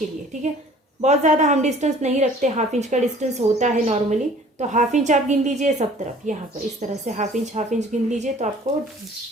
लिए। ठीक है, बहुत ज़्यादा हम डिस्टेंस नहीं रखते, हाफ इंच का डिस्टेंस होता है नॉर्मली, तो हाफ इंच आप गिन लीजिए सब तरफ। यहाँ पर इस तरह से हाफ इंच गिन लीजिए तो आपको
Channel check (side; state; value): both; normal; correlation 0.51